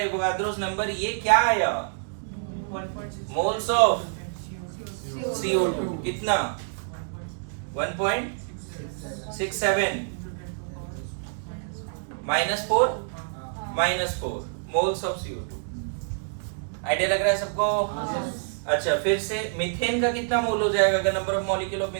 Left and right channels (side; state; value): left; silent; digital silence